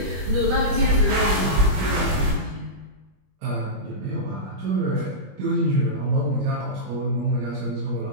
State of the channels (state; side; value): late; left; 21 ms